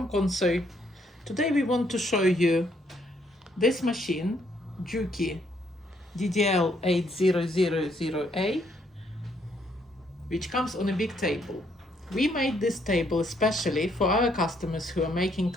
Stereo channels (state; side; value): normal; both; correlation 0.70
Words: Konso. Today we want to show you this machine, Juki DDL-8000A, which comes on a big table. We made this table especially for our customers who are making